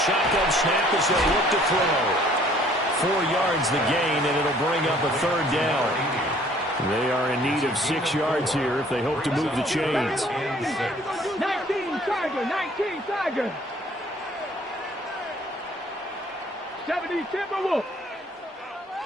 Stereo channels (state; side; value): normal; both; correlation 0.58